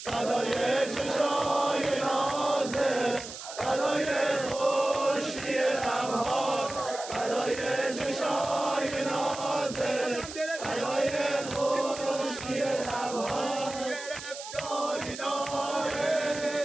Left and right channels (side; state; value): right; noise; hiss, 11 dB below the sound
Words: فدای چشای نازه فدای خوشی لبها فدای چشای نازه فدای خوشی لبها گرفتاری